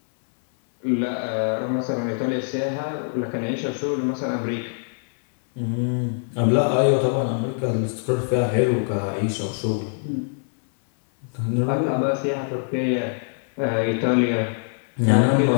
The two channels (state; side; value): silent; right; 61 dB below the other